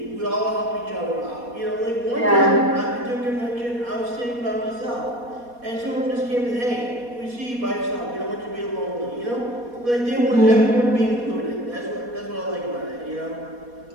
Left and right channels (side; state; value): left; late; 4.2 ms